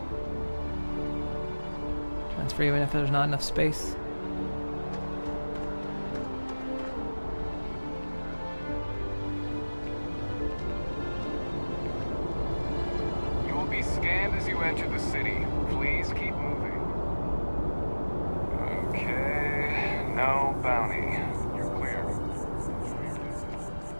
transfer even if there's not enough space. You will be scanned as you enter the city. Please keep moving. Okay, no bounty. You're clear.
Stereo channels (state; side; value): inverted; both; correlation -1.00